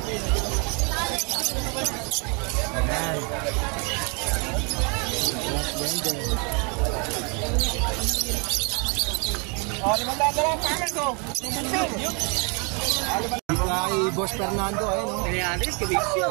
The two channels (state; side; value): quieter; left; 34.4 dB